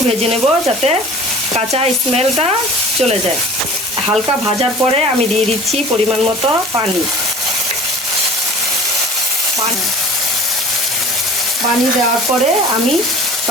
ভেজে নেব, যাতে কাঁচা স্মেলটা চলে যায়। হালকা ভাজার পরে আমি দিয়ে দিচ্ছি পরিমাণ মতো পানি। পানি দেওয়ার পরে আমি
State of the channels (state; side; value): normal; both; correlation 0.44